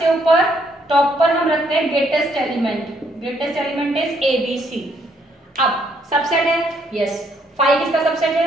ऊपर टॉप पर हम रखते हैं greatest element, greatest element is a b c. अब सबसेट है, यस, फाइव किसका सबसेट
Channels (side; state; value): both; normal; correlation 0.70